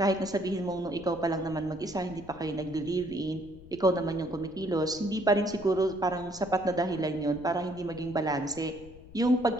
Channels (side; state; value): left; noise; rumble, 19 dB below the sound